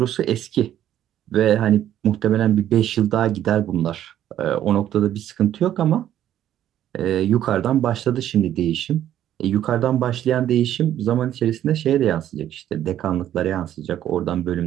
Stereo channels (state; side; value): quieter; left; 11.5 dB